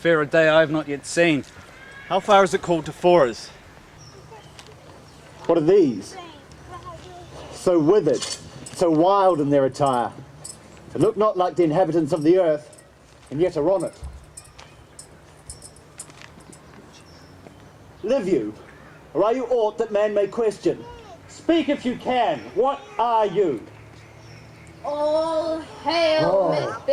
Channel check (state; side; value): identical; both; correlation 1.00